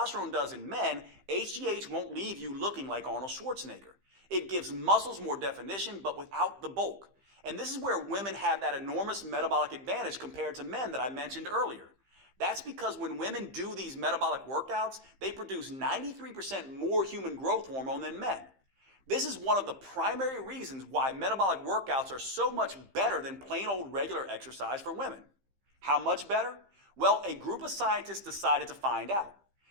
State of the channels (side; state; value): left; late; 15 ms